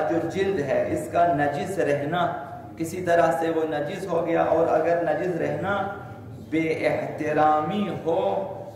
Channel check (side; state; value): both; identical; correlation 1.00